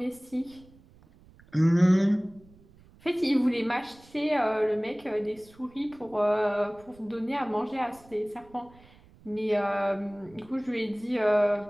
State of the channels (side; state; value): right; noise; rumble, 26 dB below the sound